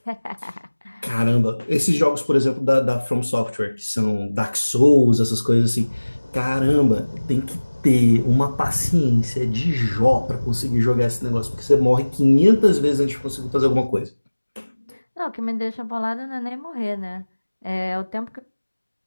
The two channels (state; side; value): inverted; both; correlation -1.00